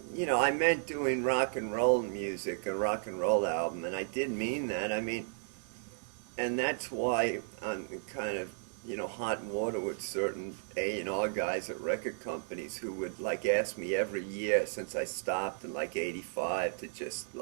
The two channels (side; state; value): left; silent; 55 dB below the other